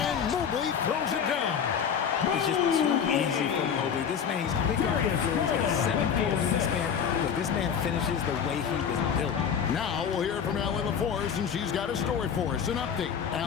Mobley throws it down. It's just too easy for Mobley. This man, he's big guard. He's got a 7'4" wingspan. Look, this man finishes the way he was built. Now we'll hear from Allie LaForce, and she's got a story for us. An update.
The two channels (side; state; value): right; quieter; 7.5 dB